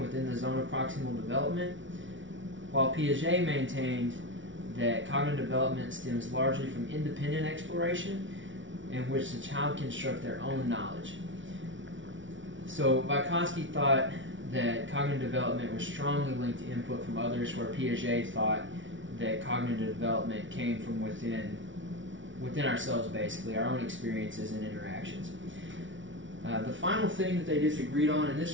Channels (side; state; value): left; late; 0.56 ms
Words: the zone of proximal development, while Piaget maintained that cognitive development stems largely from independent exploration, in which the child can construct their own knowledge. So Vygotsky thought that cognitive development was strongly linked to input from others, where Piaget thought that cognitive development came from within ourselves, basically, our own experiences and interactions. The final thing that they disagreed on, and